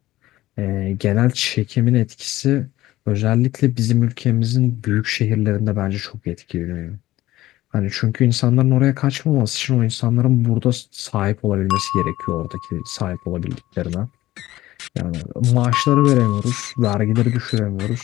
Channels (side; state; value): right; quieter; 16.0 dB